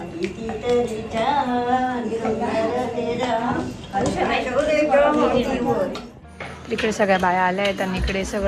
कितीतरी छान यशोदेच्या मांडीवरी. इकडे सगळ्या बाया आल्या आहेत आणि इकडे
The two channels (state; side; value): identical; both; correlation 1.00